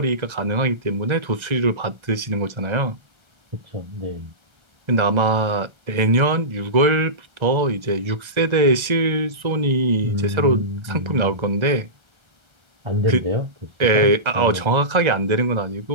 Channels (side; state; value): left; late; 1.3 ms